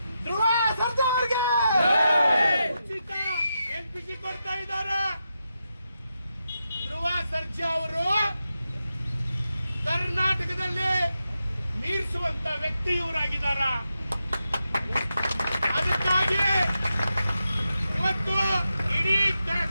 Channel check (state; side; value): inverted; both; correlation -0.88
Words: ಧ್ರುವ ಸರ್ಜಾ ಅವರಿಗೆ ಉಚಿತ LPG ಕೊಡ್ತಾ ಇದ್ದಾರೆ. ಧ್ರುವ ಸರ್ಜಾ ಅವರು ಕರ್ನಾಟಕದಲ್ಲಿ ಮೀರಿಸುವಂತ ವ್ಯಕ್ತಿ ಇವರಾಗಿದ್ದಾರ. ಅದಕ್ಕಾಗಿ ಇವತ್ತು ಇಡೀ